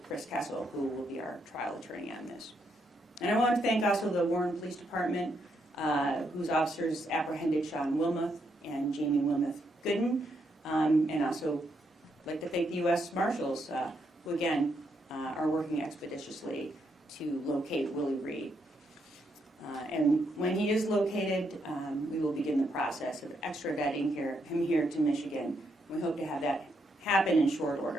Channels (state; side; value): normal; both; correlation 0.78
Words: Chris Kessel, who will be our trial attorney on this. And I want to thank also the Warren Police Department, whose officers apprehended Sean Wilmoth and Jamie Wilmoth Gooden, and also like to thank the U.S. Marshals, who again are working expeditiously to locate Willie Reed. And when he is located, we will begin the process of extraditing him here to Michigan. We hope to have that happen in short